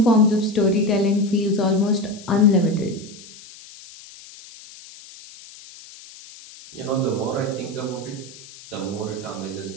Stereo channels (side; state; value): left; noise; hiss, 19 dB below the sound